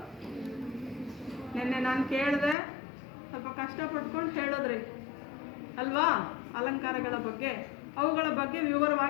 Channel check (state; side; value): drops out; right; at 2.6 s